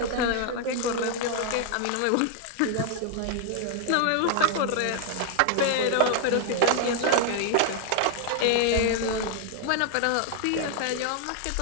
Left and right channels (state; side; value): different; both; correlation 0.00